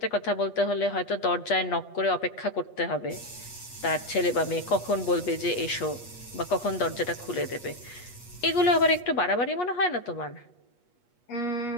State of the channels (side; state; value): right; late; 8.3 ms